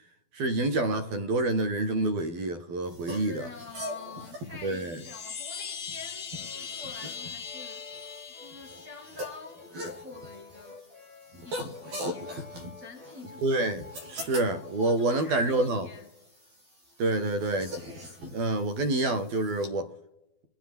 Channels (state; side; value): late; left; 12 ms